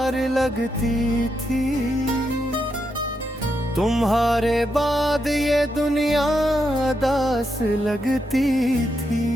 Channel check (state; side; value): normal; both; correlation 0.83